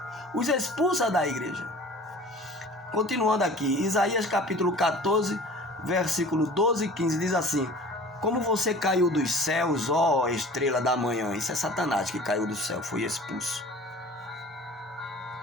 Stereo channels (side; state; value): both; normal; correlation 0.44